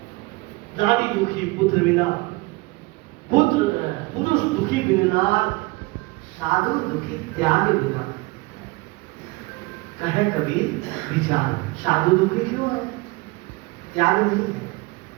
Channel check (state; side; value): quieter; left; 23.8 dB